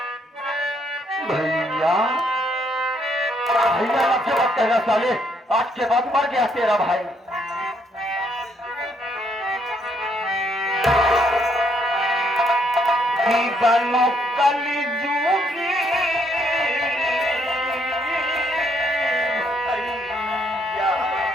भैया भैया लफ्ज़ मत कहना साले। आज के बाद मर गया तेरा भाई। बनो कली जूगी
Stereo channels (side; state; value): both; normal; correlation 0.71